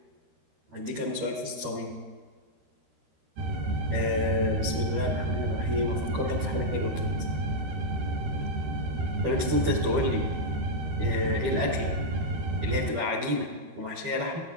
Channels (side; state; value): left; late; 13 ms